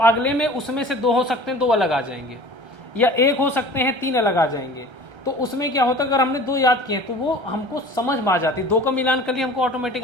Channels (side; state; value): left; late; 1.3 ms